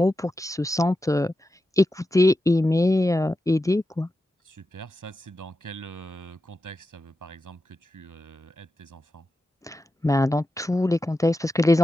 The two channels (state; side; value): normal; both; correlation 0.90